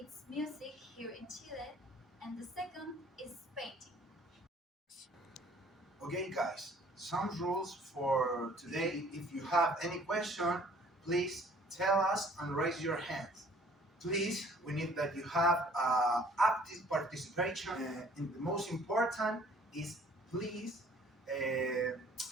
music here in Chile, and the second is painting. Okay, guys, some rules for today. If you have any question, please tell us and raise your hands. Please, we need that you have active participation. And the most important is please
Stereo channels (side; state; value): both; normal; correlation 0.55